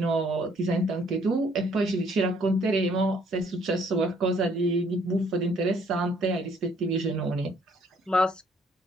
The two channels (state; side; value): normal; both; correlation 0.63